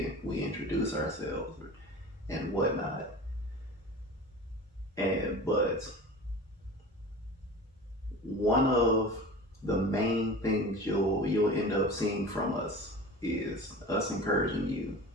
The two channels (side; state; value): both; normal; correlation 0.36